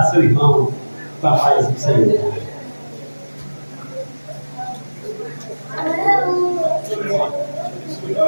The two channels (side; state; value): both; inverted; correlation -1.00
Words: seu irmão com a paz do Senhor.